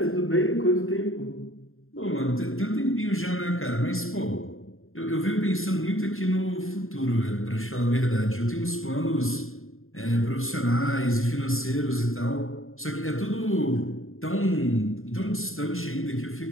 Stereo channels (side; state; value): right; late; 0.61 ms